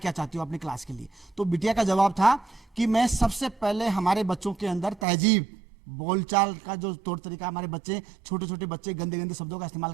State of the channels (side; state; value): left; drops out; at 5.1 s